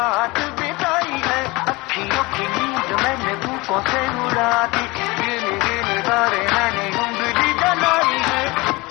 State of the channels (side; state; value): right; quieter; 23.5 dB